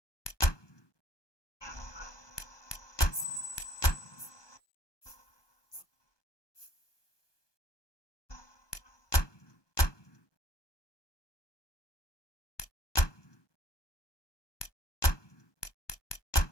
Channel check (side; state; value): right; late; 1.2 ms